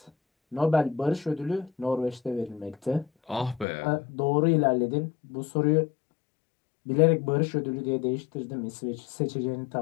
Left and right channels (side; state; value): right; drops out; at 3.7 s